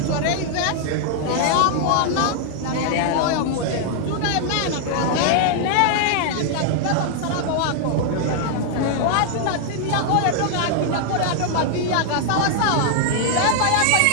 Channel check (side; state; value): both; different; correlation 0.00